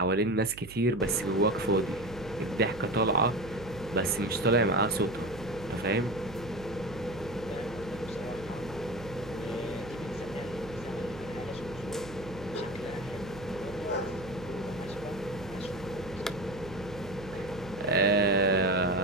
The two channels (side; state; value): right; noise; hum, 16 dB below the sound